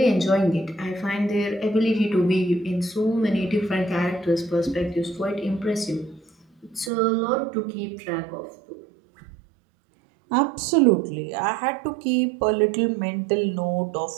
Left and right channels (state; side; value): drops out; left; at 6.9 s